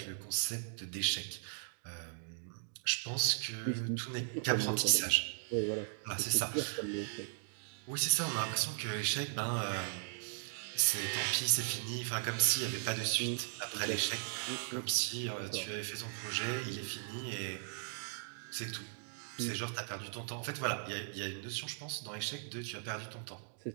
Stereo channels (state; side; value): silent; left; digital silence